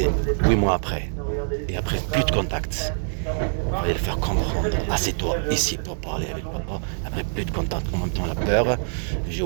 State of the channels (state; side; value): silent; left; digital silence